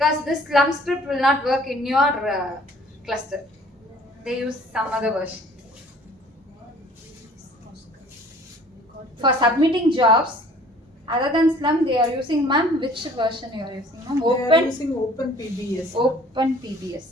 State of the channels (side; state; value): both; normal; correlation 0.53